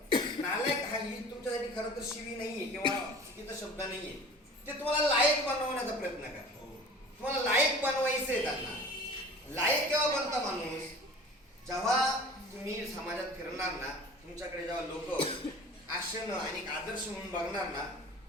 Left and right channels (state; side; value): normal; both; correlation 0.42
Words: नालायक हा ही तुमच्यासाठी खरं तर शिवी नाहीये किंवा चुकीचा शब्द नाहीये, ते तुम्हाला लायक बनवण्याचा प्रयत्न करा. तुम्हाला लायक बनवायचंय. त्यांना लायक केव्हा बनता माणूस, जेव्हा तुम्ही समाजात फिरणार ना, तुमच्याकडे जेव्हा लोक आशेनं आणि आदर्श म्हणून बघणार ना,